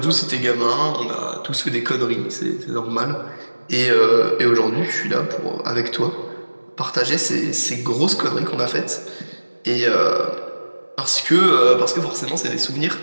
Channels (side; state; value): both; inverted; correlation -1.00